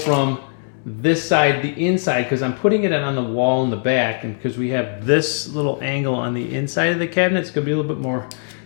this side, the inside, because I'm putting it on the wall in the back, and because we have this little angle on the inside of the cabinet, it's going to be a little bit more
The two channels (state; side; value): silent; right; 66 dB below the other